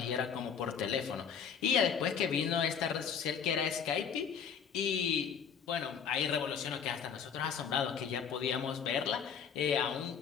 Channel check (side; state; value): right; quieter; 7.2 dB